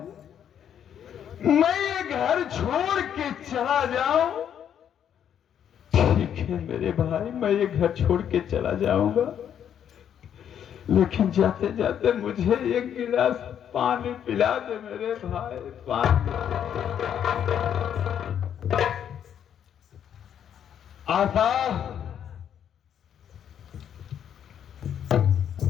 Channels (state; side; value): quieter; right; 9.2 dB